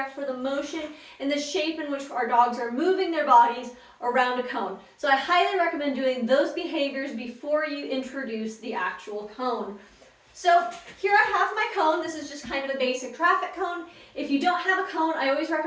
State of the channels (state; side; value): identical; both; correlation 1.00